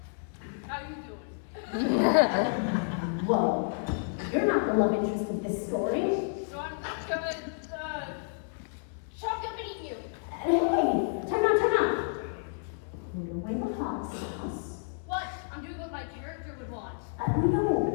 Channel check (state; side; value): silent; right; 58 dB below the other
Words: how you doing? Whoa, you're not the love interest of this story. So I'm gonna chop you up and eat you. Hey, turn on. Put away the hot sauce. What? I'm doing what my character would want.